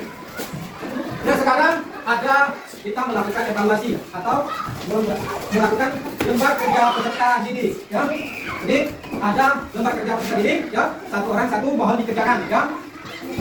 Nah, sekarang ada kita melakukan evaluasi atau melakukan lembar kerja peserta didik ya. Jadi ada lembar kerja peserta didik ya, satu orang satu mohon dikerjakan ya.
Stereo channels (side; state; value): both; identical; correlation 1.00